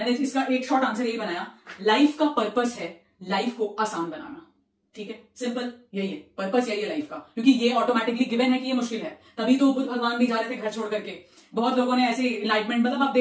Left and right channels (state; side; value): identical; both; correlation 1.00